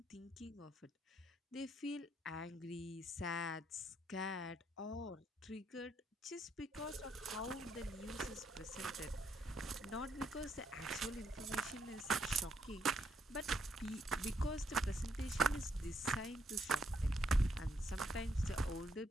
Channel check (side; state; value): both; normal; correlation 0.74